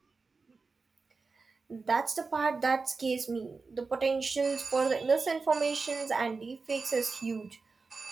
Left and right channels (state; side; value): quieter; left; 4.3 dB